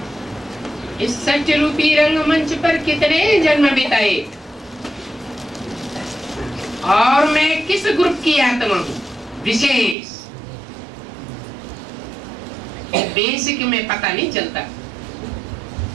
इस सत्य रूपी रंगमंच पर कितने जन्म बिताए और मैं किस ग्रुप की आत्मा हूं, विशेष। बेसिक में पता नहीं चलता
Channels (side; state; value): left; drops out; at 10.0 s